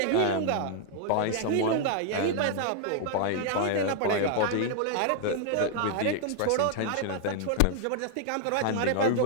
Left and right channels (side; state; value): both; different; correlation 0.00